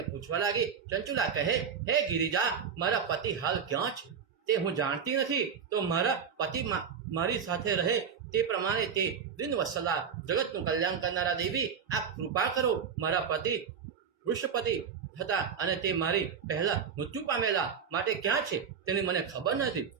પૂછવા લાગી. ચંચુલા કહે, હે ગિરિજા, મારા પતિ હાલ ક્યાં છે તે હું જાણતી નથી. તો મારા પતિ મારી સાથે રહે તે પ્રમાણે તે દિનવત્સલા જગતનું કલ્યાણ કરનારા દેવી, આપ કૃપા કરો. મારા પતિ વૃષપતિ હતા અને તે મારી પહેલા મૃત્યુ પામેલા, માટે ક્યાં છે તેની મને ખબર નથી.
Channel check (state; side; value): quieter; left; 6.8 dB